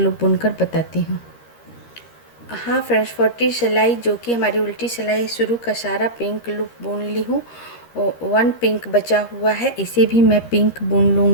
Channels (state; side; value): late; right; 13 ms